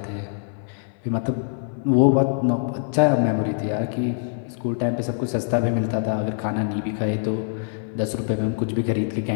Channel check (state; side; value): silent; right; 63 dB below the other